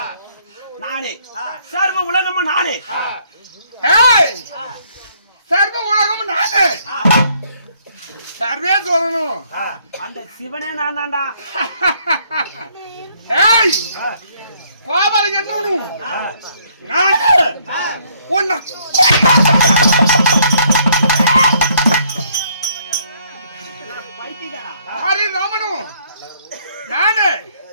நானே, சர்வ உலகமும் நானே. சர்வ உலகமும் நானே, சர்வே சொல்லணும். அந்த சிவனே நான் தான்டா. கோபால என்னவனும் நானே. உன்னை ஹரிராமனும் நானே.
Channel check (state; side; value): inverted; both; correlation -0.66